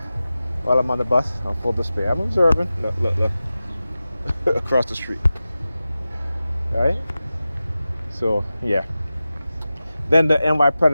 while I'm on the bus on full display. I'm observing. Look, across the street. All right. So yeah. Then the NY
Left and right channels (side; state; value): both; inverted; correlation -0.94